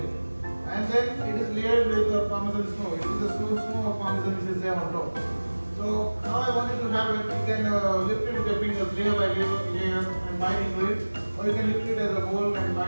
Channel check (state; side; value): inverted; both; correlation -1.00